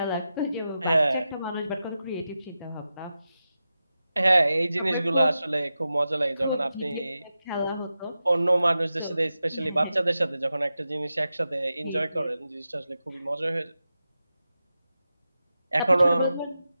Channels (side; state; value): both; inverted; correlation -0.91